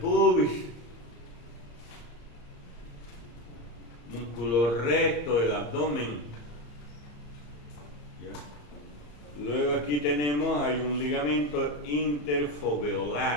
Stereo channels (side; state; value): right; late; 34 ms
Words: músculo recto del abdomen. Luego aquí tenemos, hay un ligamento